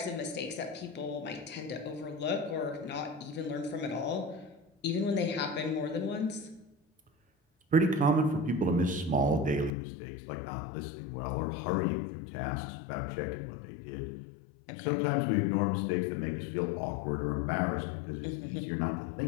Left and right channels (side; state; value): right; drops out; at 9.7 s